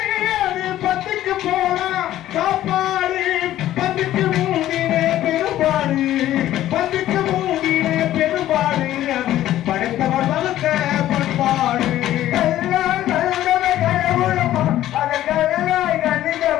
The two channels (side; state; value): right; quieter; 13.3 dB